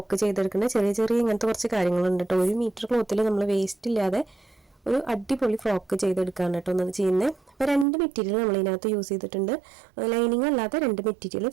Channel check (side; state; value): left; drops out; at 7.9 s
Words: ചെയ്തെടുക്കുന്നത്. ചെറിയ ചെറിയ ഇങ്ങനത്തെ കുറച്ച് കാര്യങ്ങളുണ്ട് കേട്ടോ. 1 മീറ്റർ ക്ലോത്തിൽ നമ്മൾ വേസ്റ്റ് ഇല്ലാതെ ഒരു അടിപൊളി ഫ്രോക്ക് ചെയ്തെടുക്കുകയാണ് കേട്ടോ ഒന്നത് ചെയ്യുന്നത്. അപ്പോൾ 2 മെറ്റീരിയൽ നമ്മളിതിനകത്ത് യൂസ് ചെയ്തിട്ടുണ്ട്. ലൈനിങ് അല്ലാതെ 2 മെറ്റീരിയൽ